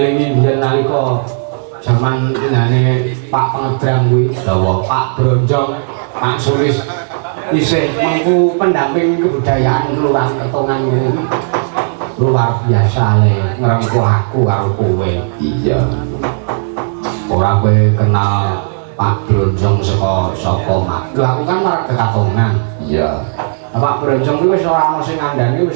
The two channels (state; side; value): silent; left; digital silence